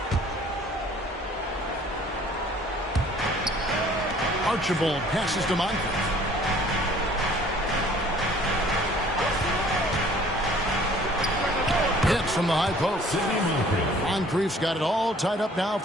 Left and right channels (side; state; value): both; normal; correlation 0.54